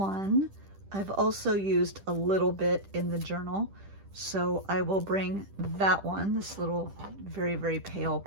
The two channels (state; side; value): late; left; 10 ms